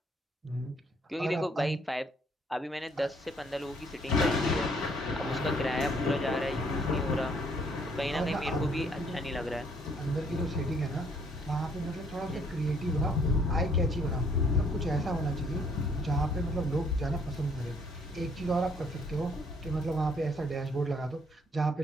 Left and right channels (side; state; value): both; normal; correlation 0.65